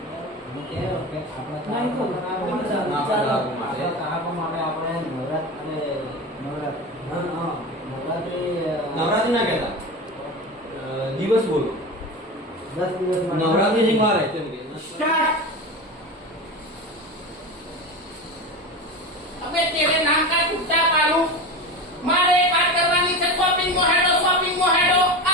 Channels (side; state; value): both; normal; correlation 0.26